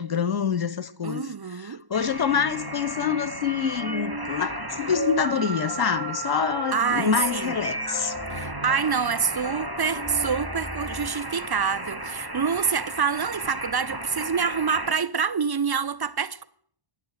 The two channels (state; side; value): late; left; 1.1 ms